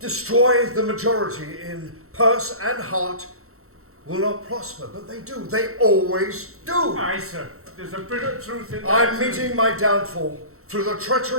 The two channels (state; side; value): late; left; 0.63 ms